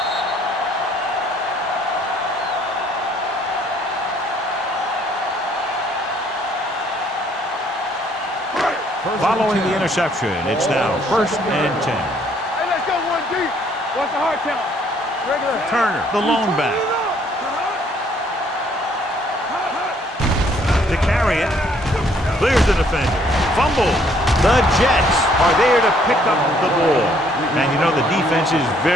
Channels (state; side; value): normal; both; correlation 0.64